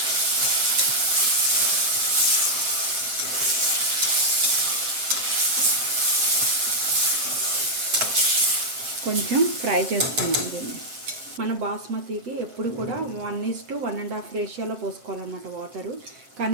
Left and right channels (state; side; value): late; left; 7.6 ms